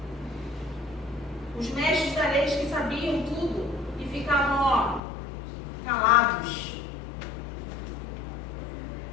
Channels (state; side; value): drops out; right; at 5.0 s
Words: Os mestres da lei que sabiam tudo e ficavam, calados.